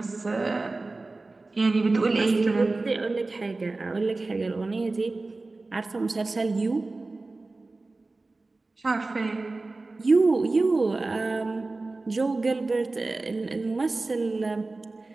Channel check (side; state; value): left; quieter; 3.3 dB